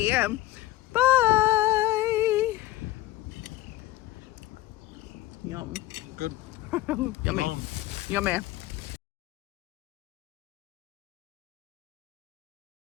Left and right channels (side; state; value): right; quieter; 16.0 dB